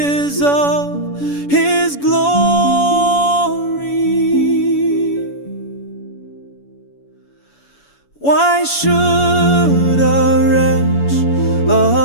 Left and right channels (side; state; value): right; late; 7.0 ms